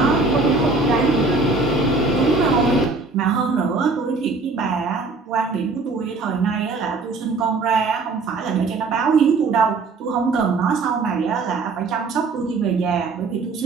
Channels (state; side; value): quieter; left; 3.9 dB